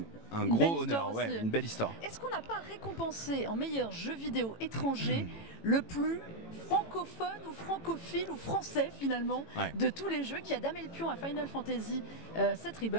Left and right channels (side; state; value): right; late; 18 ms